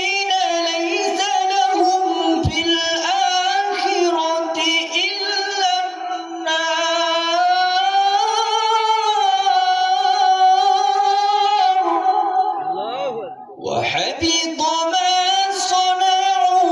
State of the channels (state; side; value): identical; both; correlation 1.00